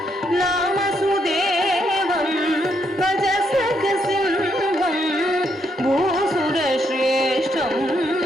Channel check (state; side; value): normal; both; correlation 0.76